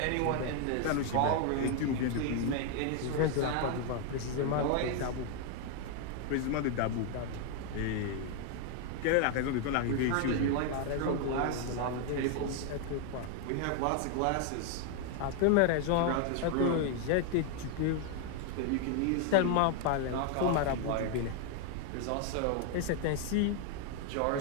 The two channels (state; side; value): different; both; correlation 0.00